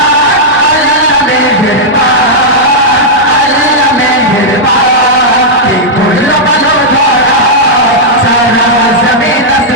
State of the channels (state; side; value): normal; both; correlation -0.07